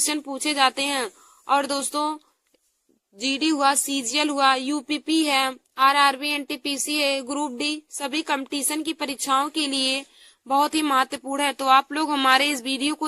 पूछे जाते हैं। और दोस्तों, जीडी हुआ, सीजीएल हुआ, यूपीपी है, आरआरबी, एनटीपीसी है, ग्रुप डी, सभी कंपटीशन की परीक्षाओं के लिए बहुत ही महत्वपूर्ण है। तो आप लोग हमारे इस वीडियो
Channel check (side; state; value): both; identical; correlation 1.00